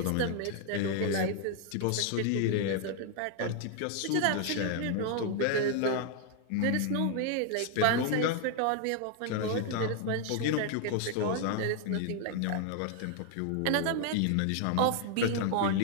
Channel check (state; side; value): different; both; correlation 0.00